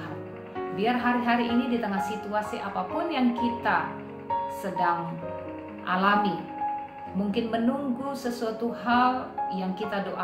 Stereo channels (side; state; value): both; identical; correlation 1.00